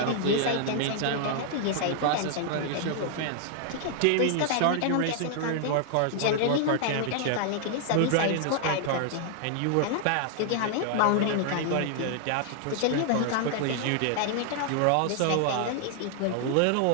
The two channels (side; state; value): both; different; correlation 0.00